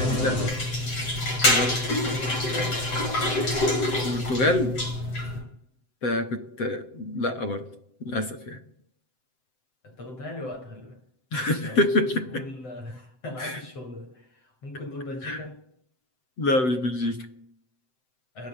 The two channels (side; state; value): right; late; 7.8 ms